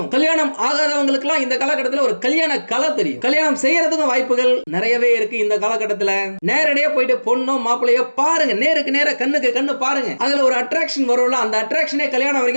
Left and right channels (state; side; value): inverted; both; correlation -1.00